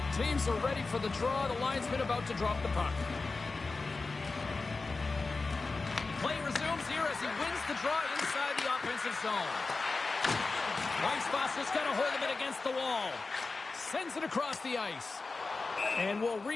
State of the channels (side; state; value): right; quieter; 3.8 dB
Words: teams are ready for the draw. The linesman about to drop the puck. Play resumes here as he wins the draw inside the offensive zone. Weisfoss just got a hold of it against the wall. Sends it across the ice. And we'll